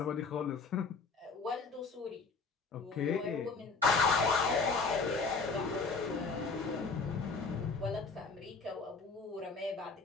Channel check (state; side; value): quieter; right; 4.5 dB